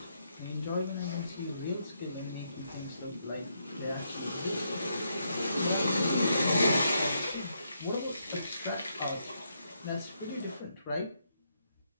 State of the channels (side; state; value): both; inverted; correlation -0.78